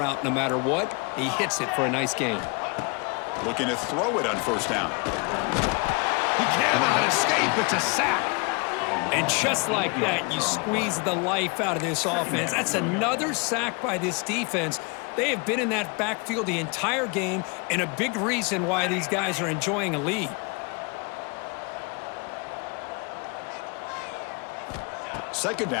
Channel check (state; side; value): quieter; right; 31.4 dB